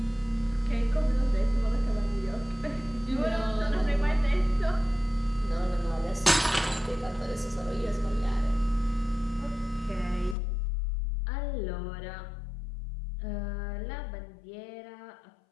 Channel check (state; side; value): drops out; right; at 10.4 s